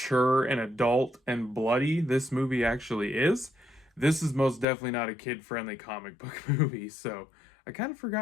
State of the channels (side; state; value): right; drops out; at 4.7 s